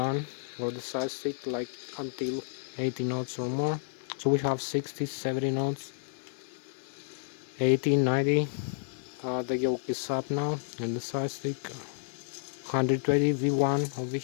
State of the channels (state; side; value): silent; right; digital silence